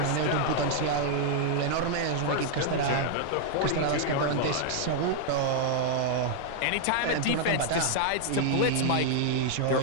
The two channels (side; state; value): both; different; correlation 0.00